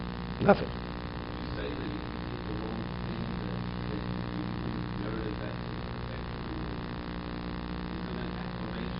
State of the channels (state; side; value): identical; both; correlation 1.00